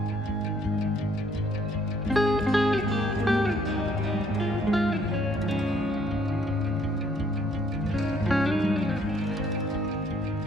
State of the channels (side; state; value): both; normal; correlation 0.65